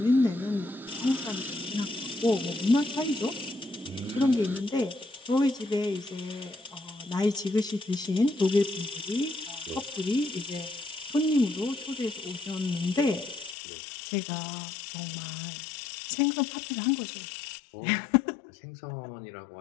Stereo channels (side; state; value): right; drops out; at 13.6 s